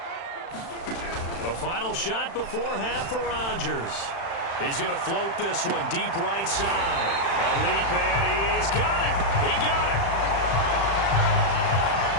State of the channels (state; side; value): late; right; 35 ms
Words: A final shot before half for Rodgers. He's going to float this one deep right side. A leap, and he's got it. He got it.